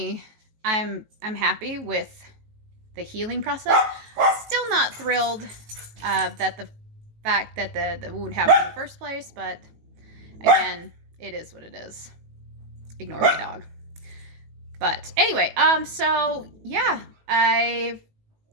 I'm happy with the healing process. Still not thrilled that the fact that the wound happened in the first place, but again, it is what it is. Ignore my dog. But anyway, so yeah, I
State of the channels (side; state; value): left; late; 18 ms